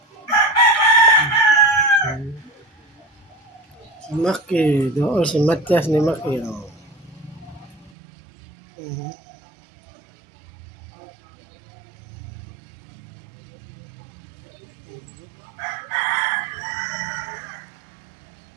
Si Maki. Doon si Matias ni Maki.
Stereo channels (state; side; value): drops out; left; at 7.9 s